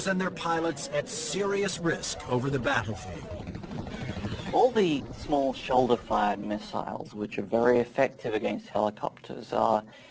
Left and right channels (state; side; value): identical; both; correlation 1.00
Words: and their pilots at serious risk over the battlefield. All the small shoulder-fired missiles, which are very effective against helicopters, are